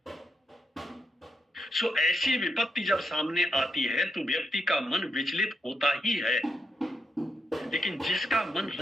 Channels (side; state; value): both; normal; correlation 0.82